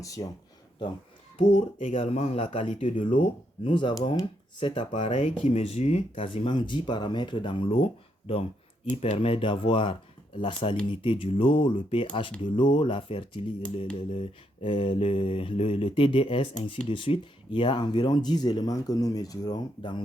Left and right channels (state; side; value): normal; both; correlation 0.78